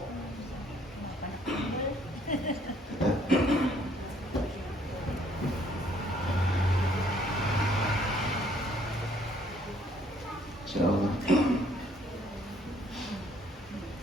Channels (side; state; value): both; normal; correlation 0.64